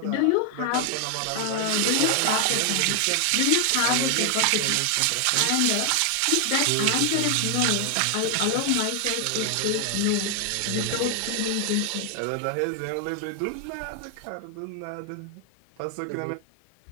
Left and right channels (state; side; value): different; both; correlation 0.00